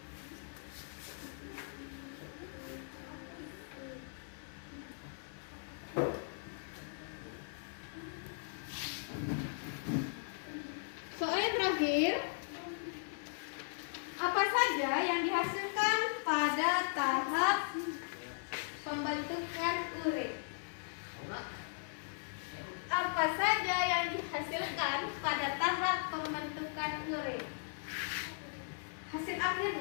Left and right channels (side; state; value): right; silent; 52 dB below the other